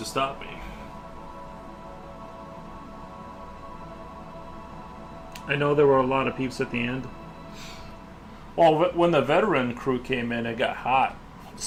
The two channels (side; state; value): both; identical; correlation 1.00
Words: stop me? I know there were a lot of peeps at the end. Well, when the veteran crew came in, it got hot.